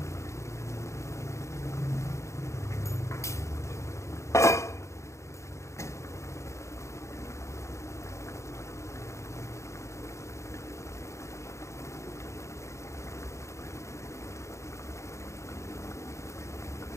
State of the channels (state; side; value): late; right; 0.14 ms